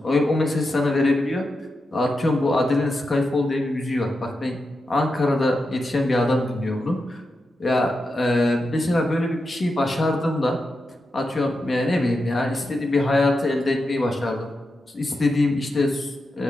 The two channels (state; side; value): normal; both; correlation 0.88